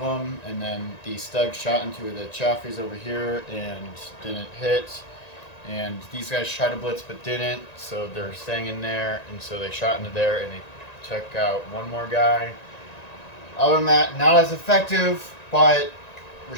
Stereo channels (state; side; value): late; right; 1.9 ms